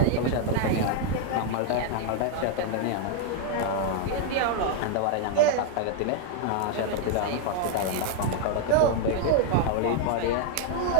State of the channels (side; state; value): both; different; correlation 0.00